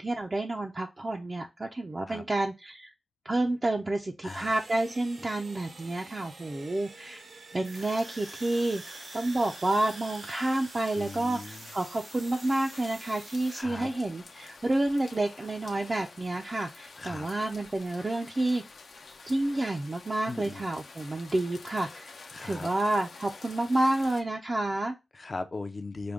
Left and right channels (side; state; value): both; normal; correlation 0.97